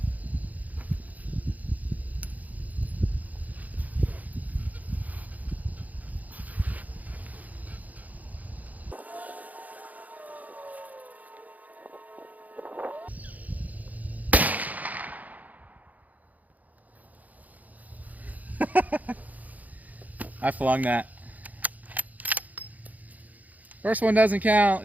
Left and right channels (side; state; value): left; late; 0.078 ms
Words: I flung that. First one doesn't